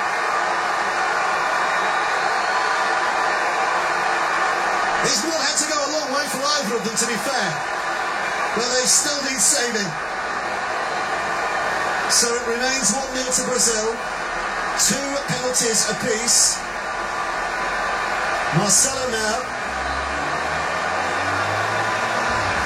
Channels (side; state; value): both; identical; correlation 1.00